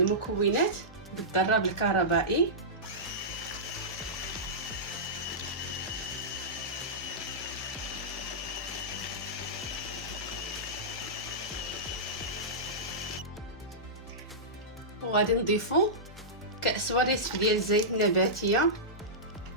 بالضراب الكهربائي. وغادي نضيفوا كأس ونصف ديال الزيت النباتيه،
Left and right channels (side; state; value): both; normal; correlation -0.15